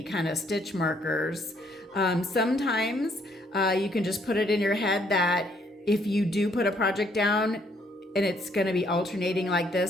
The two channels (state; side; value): normal; both; correlation 0.68